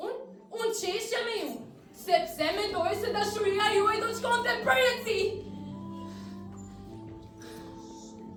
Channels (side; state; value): both; identical; correlation 1.00